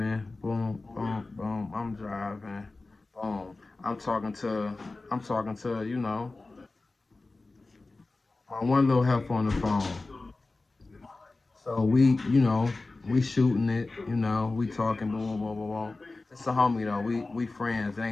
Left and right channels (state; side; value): quieter; right; 3.4 dB